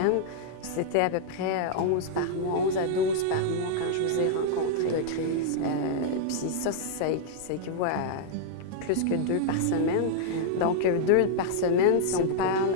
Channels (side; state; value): both; different; correlation -0.01